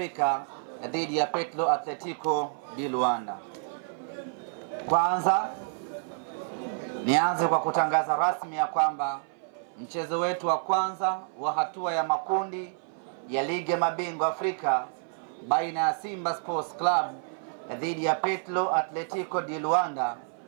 dhidi ya Petro Atletico di Luanda. Kwanza nianze kwa kutangaza rasmi ya kwamba mchezo wetu wa kwanza wa hatua ya makundi ya ligi ya mabingwa Afrika baina ya Simba Sports Club dhidi ya Petro Atletico di Luanda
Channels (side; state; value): left; silent; 57 dB below the other